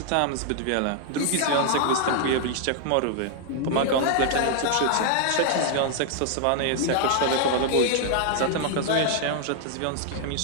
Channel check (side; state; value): both; different; correlation 0.00